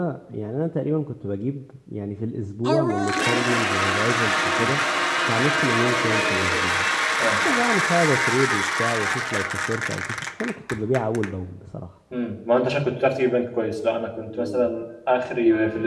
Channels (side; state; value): both; identical; correlation 1.00